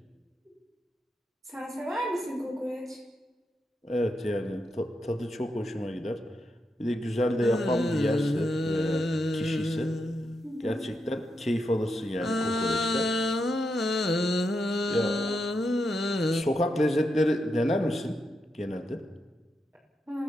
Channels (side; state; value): both; normal; correlation 0.84